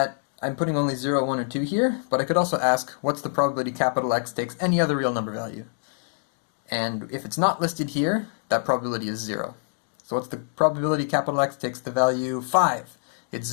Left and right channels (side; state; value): right; silent; digital silence